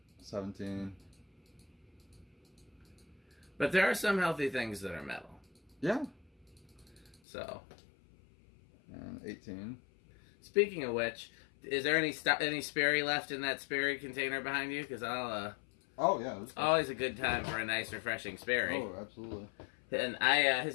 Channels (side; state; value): right; drops out; at 7.2 s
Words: 17. But there are some healthy things that are metal. Yeah. So. And 18. Speaking of which, is there any Sperry left in that Sperry container behind you? Because I'll. Oh yeah. It's always a good time for a nice, refreshing Sperry. Oh, absolutely. And